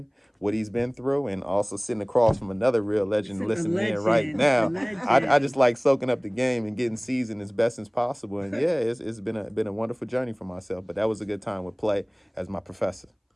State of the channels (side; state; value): both; identical; correlation 1.00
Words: what he's been through, and also sitting across from another real legend listening in right now. I just like soaking up the game and getting seasoned as best as possible. And yeah, it's been a wonderful journey for myself. But that was a good time with Play as my professor.